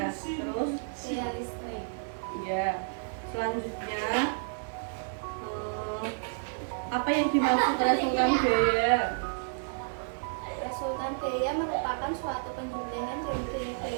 terus Gaya listrik. ya. Selanjutnya, apa yang dimaksud resultan gaya? Resultan gaya merupakan suatu penjumlahan dari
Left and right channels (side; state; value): left; silent; digital silence